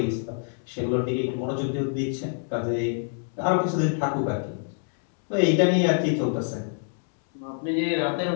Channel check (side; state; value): right; silent; 61 dB below the other